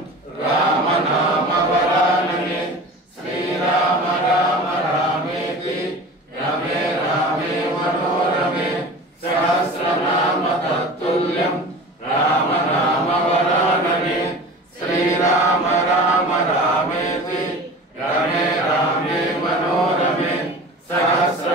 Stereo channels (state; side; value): normal; both; correlation 0.37